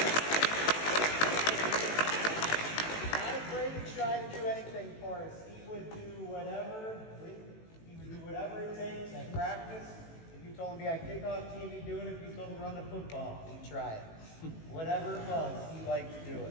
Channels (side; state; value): right; late; 18 ms